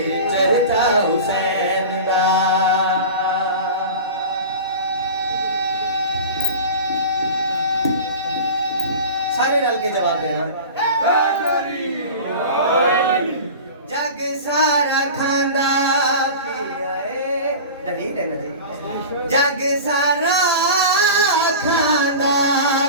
چرچا حسین دا. سارے رل کے جواب دینا. جگ سارا کھاندا پیا ہے. دلیل ہے نا جی. جگ سارا کھاندا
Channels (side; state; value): both; inverted; correlation -0.33